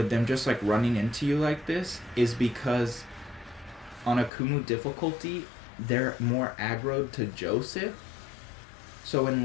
them just like running into you like this is because on Akumu difficulty, they're more aggroed to Joseph. So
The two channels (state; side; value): drops out; right; at 4.3 s